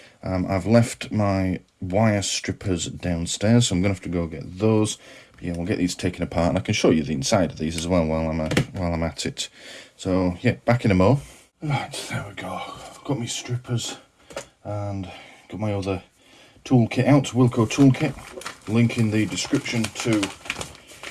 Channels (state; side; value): identical; both; correlation 1.00